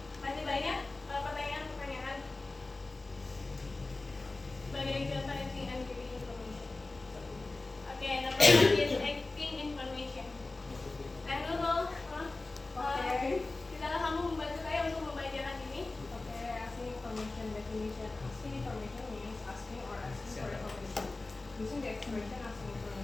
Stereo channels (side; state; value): right; quieter; 3.3 dB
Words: Masih banyak pertanyaan-pertanyaan sebagai contoh asking and giving information. Okay, number one is asking information. And dulu, silakan kamu membantu saya untuk membacakan ini. Okay, asking information definition. Asking information means asking or asking for information. Using the expression asking